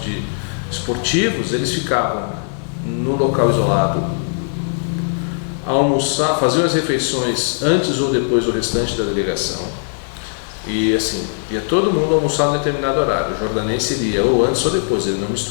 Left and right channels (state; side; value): silent; right; digital silence